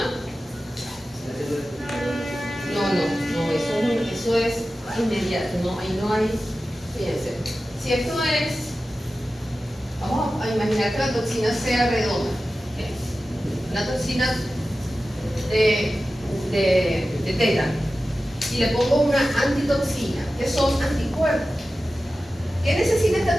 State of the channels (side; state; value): both; normal; correlation 0.94